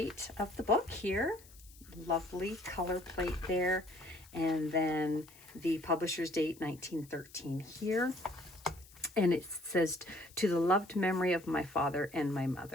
of the book here. Lovely color plate there. And then the publisher's date, 1913 here. And it says, "To the loved memory of my father and my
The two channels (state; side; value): noise; left; hiss, 23 dB below the sound